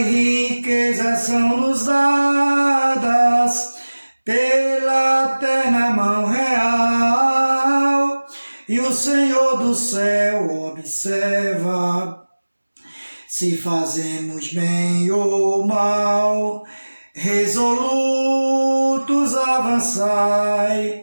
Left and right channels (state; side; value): inverted; both; correlation -1.00